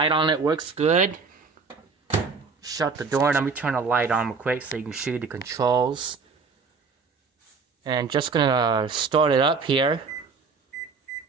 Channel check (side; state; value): left; quieter; 4.9 dB